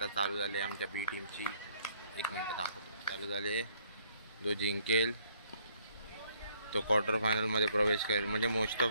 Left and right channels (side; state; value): both; inverted; correlation -0.66